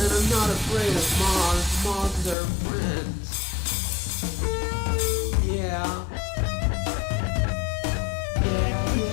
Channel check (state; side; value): drops out; right; at 2.4 s